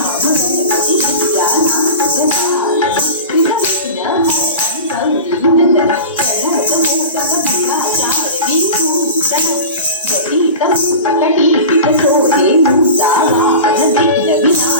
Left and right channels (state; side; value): inverted; both; correlation -0.31